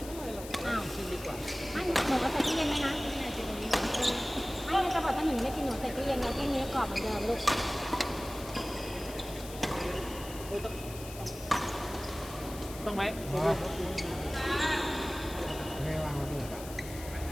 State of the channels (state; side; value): noise; left; hiss, 14 dB below the sound